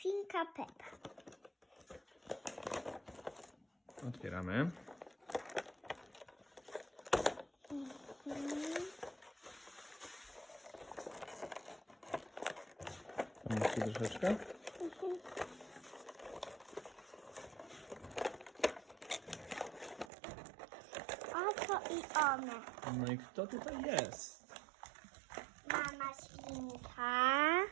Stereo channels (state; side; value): drops out; left; at 20.1 s